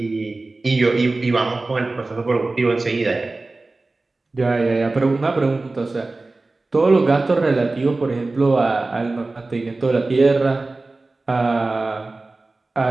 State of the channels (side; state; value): left; quieter; 3.3 dB